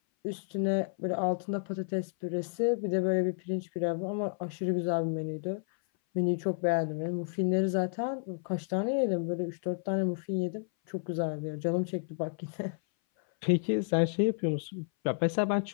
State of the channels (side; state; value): right; silent; 57 dB below the other